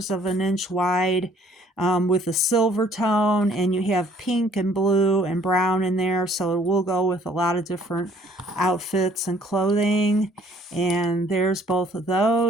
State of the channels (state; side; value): normal; both; correlation 0.59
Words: of an inch wide, with a silver tone, and you have pink and blue and brown in there, so it will go with a lot of different outfits and clothing. And there's both of